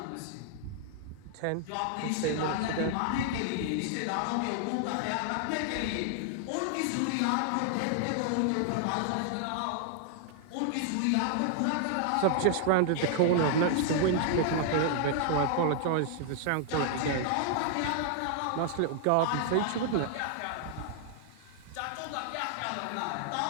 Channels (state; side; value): different; both; correlation -0.01